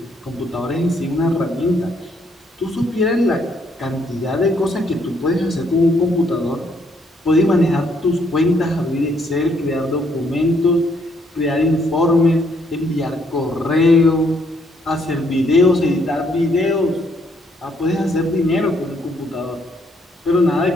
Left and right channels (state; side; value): normal; both; correlation 0.70